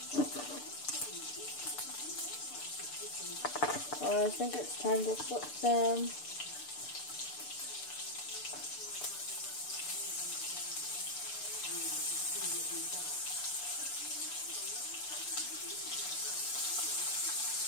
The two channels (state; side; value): late; right; 6.8 ms